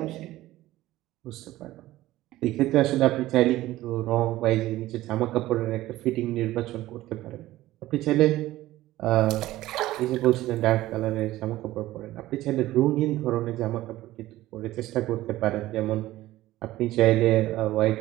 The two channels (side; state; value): left; quieter; 16.0 dB